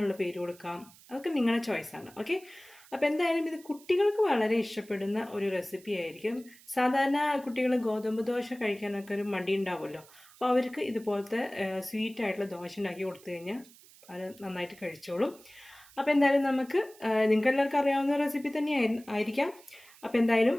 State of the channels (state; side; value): noise; right; hiss, 24 dB below the sound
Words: പേര് കൊടുക്കാം. അതൊക്കെ നിങ്ങളുടെ ചോയ്സാണ്. ഓക്കെ, അപ്പോൾ എന്തായാലും ഇത് കുട്ടികൾക്ക് വളരെ ഇഷ്ടപ്പെടുന്ന ഒരു റെസിപ്പി ആയിരിക്കും. സാധാരണ കുട്ടികൾ ഗോതമ്പ് ദോശ കഴിക്കാനൊക്കെ ഒരു മടി ഉണ്ടാവുമല്ലോ. അപ്പോൾ അവർക്ക് ഇതുപോലത്തെ സ്വീറ്റ് ആയിട്ടുള്ള ദോശ ഉണ്ടാക്കി കൊടുത്തു കഴിഞ്ഞാൽ അത് നന്നായിട്ട് കഴിച്ചോളും. അപ്പോൾ എന്തായാലും നമുക്ക് നിങ്ങൾക്ക് എല്ലാവർക്കും അറിയാവുന്ന റെസിപ്പി തന്നെ ആയിരിക്കാം. അപ്പോൾ എന്തായാലും